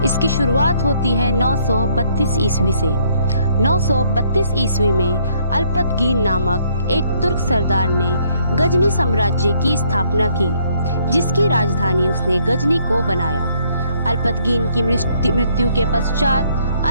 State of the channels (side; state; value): both; inverted; correlation -0.67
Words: इसकी शुरुआत होती है 932 ईस्वी से। 932 ईस्वी में अल्पतगीन नामक एक तुर्क सरदार ने गजनी साम्राज्य की स्थापना की, जिसकी राजधानी उसने गजनी को बनाया। अल्पतगीन की मृत्यु के पश्चात